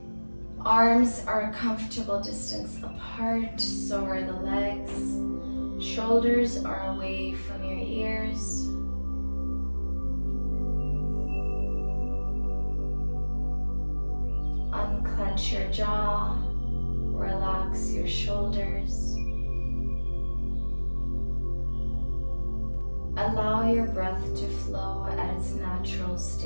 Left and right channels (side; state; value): both; inverted; correlation -1.00